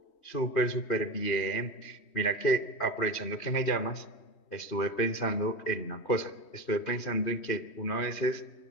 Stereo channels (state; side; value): late; right; 3.1 ms